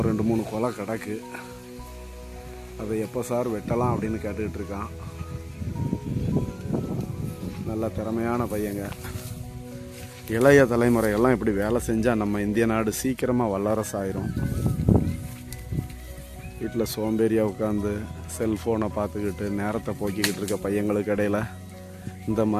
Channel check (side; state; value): both; identical; correlation 1.00